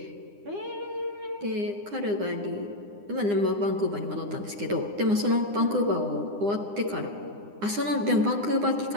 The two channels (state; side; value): late; left; 9.8 ms